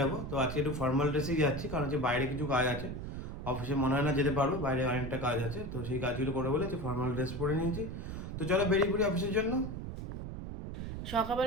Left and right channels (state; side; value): noise; right; rumble, 6 dB below the sound